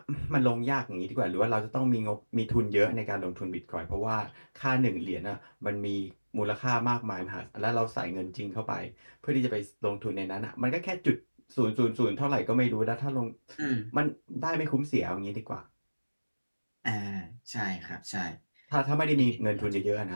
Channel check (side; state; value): both; inverted; correlation -1.00